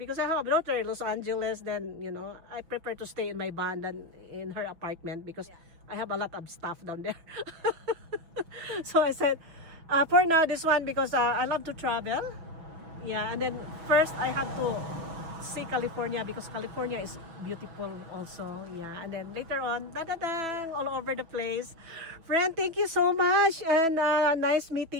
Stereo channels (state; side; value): late; left; 6.1 ms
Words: I have a daughter in Los Angeles, then I prefer to stay in my van than in her apartment because Yeah. I have a lot of stuff down there. So I said, for now, this one, because I love to travel. Yeah, and then first I have to see California because California is beautiful also. Yeah, and then later on, all over the place. Friend, thank you so much, and nice